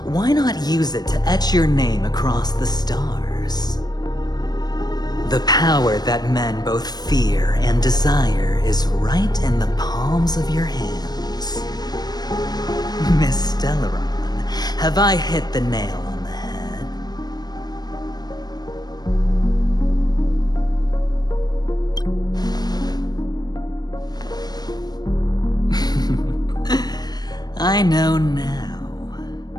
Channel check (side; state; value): right; late; 0.19 ms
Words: Why not use it to etch your name across the stars? The power that men both fear and desire is right in the palms of your hands. Miss Stellaron, have I hit the nail on the head? I know now.